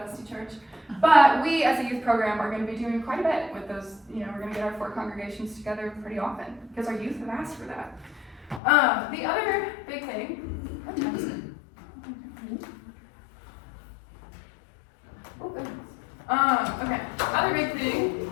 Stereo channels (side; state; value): right; drops out; at 8.6 s